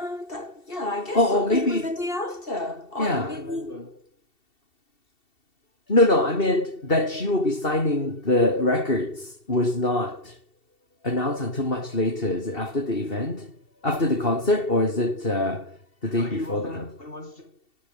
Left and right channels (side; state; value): right; late; 2.7 ms